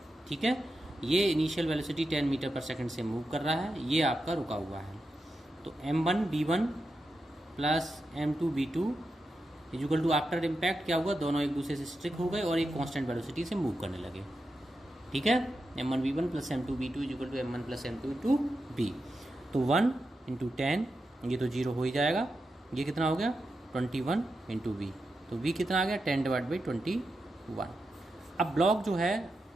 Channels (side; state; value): both; normal; correlation 0.88